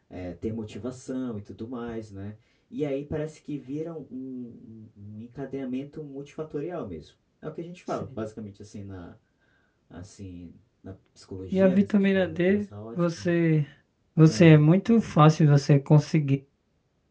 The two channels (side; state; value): both; identical; correlation 1.00